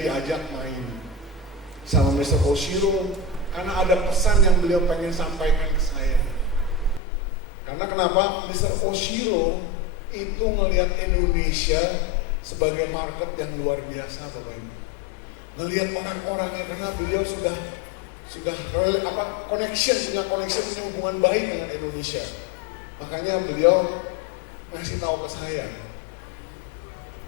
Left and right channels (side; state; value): right; drops out; at 7.0 s